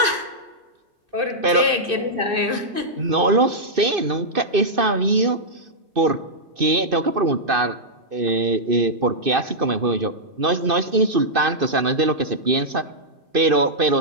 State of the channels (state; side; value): late; left; 2.5 ms